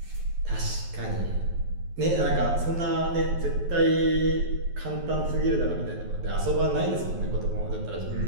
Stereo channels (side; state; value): left; late; 11 ms